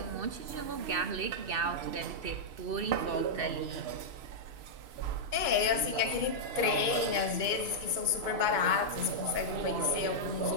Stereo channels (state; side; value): late; left; 2.2 ms